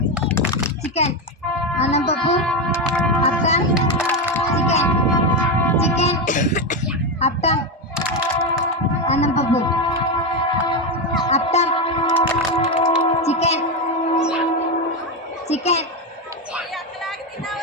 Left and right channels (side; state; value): both; normal; correlation 0.11